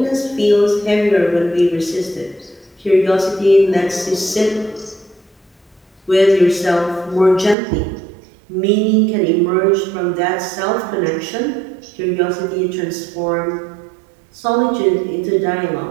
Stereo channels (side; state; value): left; drops out; at 7.6 s